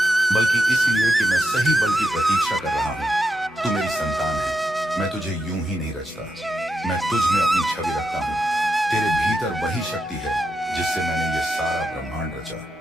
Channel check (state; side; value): normal; both; correlation 0.85